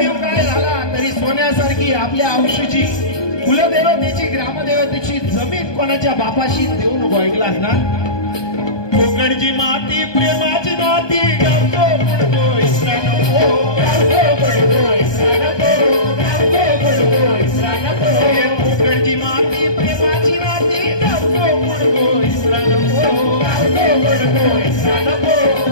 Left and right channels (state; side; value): late; right; 1.2 ms